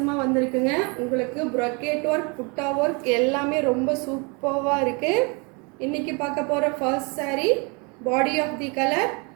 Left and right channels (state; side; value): quieter; left; 31.4 dB